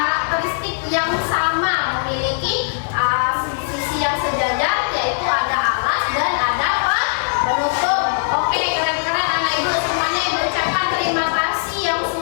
yang sama, memiliki sisi yang sejajar, yaitu ada alas dan ada penutup. Oke, keren-keren anak Ibu semuanya. Ibu ucapkan terima kasih yang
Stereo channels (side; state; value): right; silent; digital silence